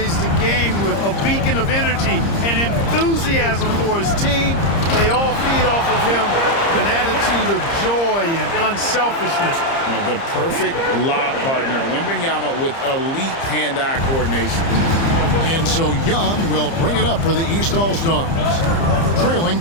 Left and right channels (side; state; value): right; late; 30 ms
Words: the game with, a beacon of energy and enthusiasm for his team. They all feed off of him with an attitude of joy and unselfishness. The perfect lob partner, Wembanyama, with elite hand-eye coordination. And so Young will bring it up for the East All-Stars. Trailing